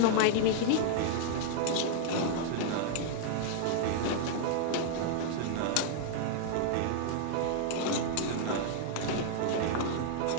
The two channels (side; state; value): both; different; correlation -0.01